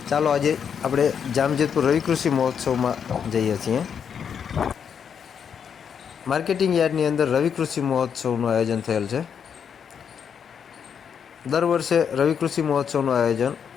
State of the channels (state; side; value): quieter; right; 7.4 dB